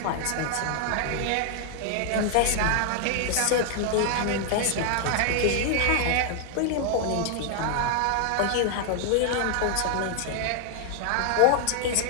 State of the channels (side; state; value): both; different; correlation 0.00